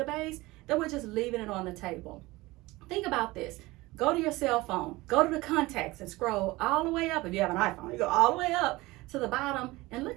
that we're just leaving it on the table. Think about this. Go to your cell phone, go to the contacts and scroll all the way up. If you have an iPhone, you go all the way up to the bottom and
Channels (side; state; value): left; quieter; 20.6 dB